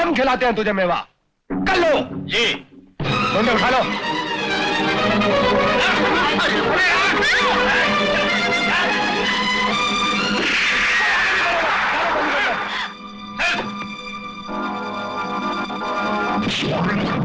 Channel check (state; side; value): identical; both; correlation 1.00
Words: खिलाते हैं तुझे मेवा। कर लो जी। मुंडे उठा लो।